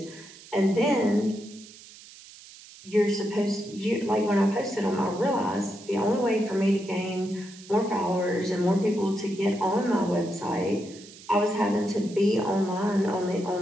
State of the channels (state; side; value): noise; right; hiss, 19 dB below the sound